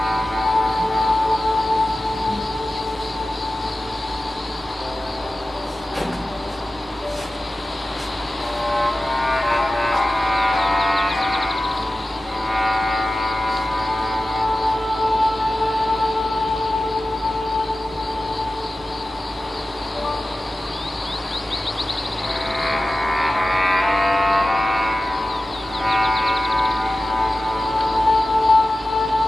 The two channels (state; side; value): normal; both; correlation 0.95